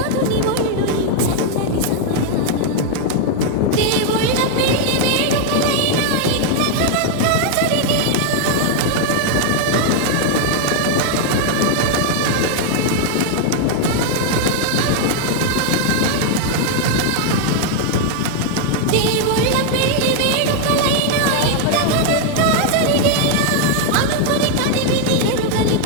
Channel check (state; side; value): different; both; correlation 0.00